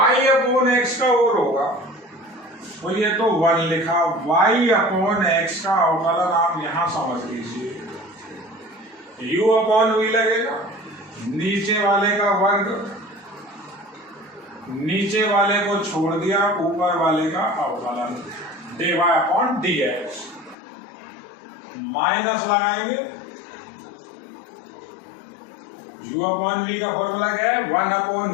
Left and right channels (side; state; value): right; drops out; at 20.6 s